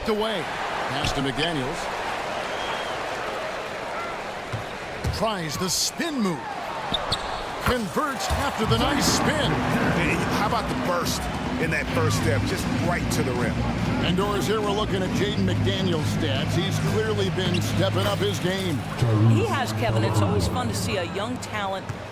away. Pass to McDaniels. Tries the spin move. Converts after the nice spin. Hey, how about the burst in that first step, just right to the rim? And Doris, here we're looking at Jaden McDaniel's stats. He's clearly been stepping up his game. He has, Kevin. It's always fun to see a young talent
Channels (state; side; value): identical; both; correlation 1.00